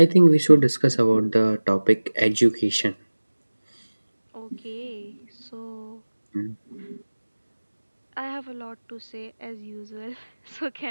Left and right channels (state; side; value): inverted; both; correlation -1.00